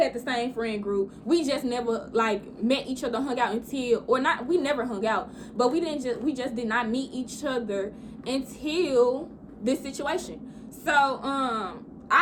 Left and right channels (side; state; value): both; identical; correlation 1.00